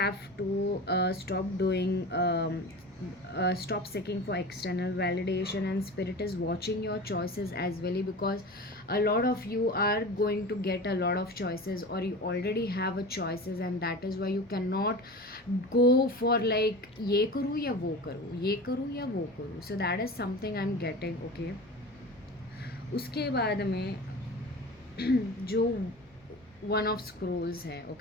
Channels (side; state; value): both; normal; correlation 0.33